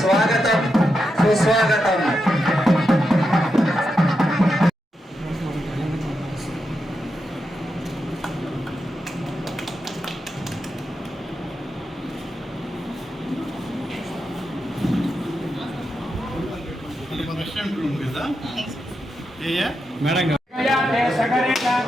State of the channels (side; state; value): both; normal; correlation 0.86